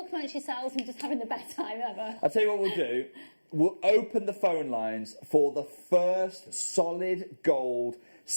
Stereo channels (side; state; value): both; inverted; correlation -1.00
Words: amongst yourselves and just having the best time ever. I'll tell you what we'll do. We'll open the phone lines for the first solid gold